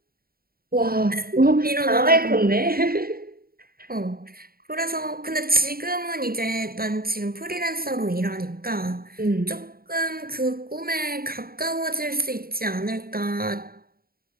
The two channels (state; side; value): late; left; 0.43 ms